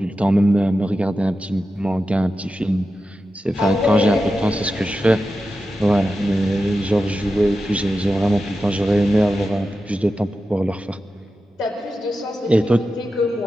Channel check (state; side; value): normal; both; correlation 0.91